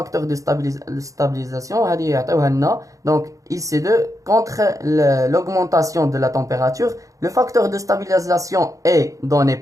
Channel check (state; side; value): late; left; 0.16 ms